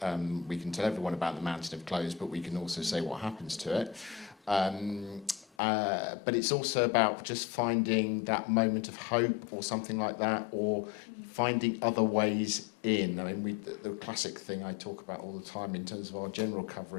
we can tell everyone about the mountain of clothes, but we can also say what happens to it. But it's also about just finding that moment of hope or something like that, or finding other ways in. I mean, the classic thing I talk about all the time in terms of our general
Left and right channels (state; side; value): drops out; right; at 5.5 s